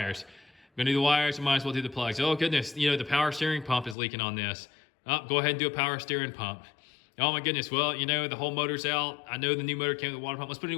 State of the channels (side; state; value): right; drops out; at 4.0 s